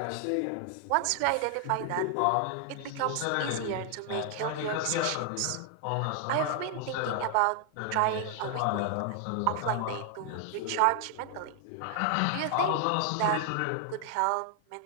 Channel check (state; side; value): different; both; correlation 0.00